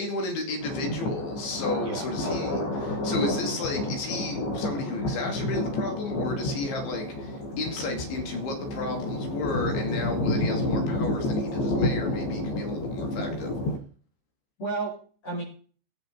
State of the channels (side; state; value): right; late; 15 ms